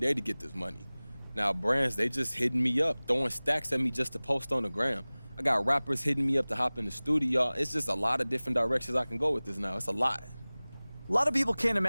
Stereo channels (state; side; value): inverted; both; correlation -0.99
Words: to get this money. Now, brands, they just hitting me up, throwing stacks at me just to post on the gram. I got rappers hitting me up to hop in the studio. It's just a lot of different directions I can go with this now. It's a lot. A lot of people can't